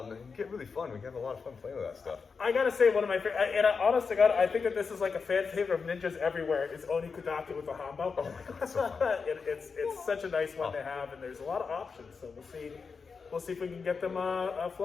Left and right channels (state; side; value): quieter; right; 5.2 dB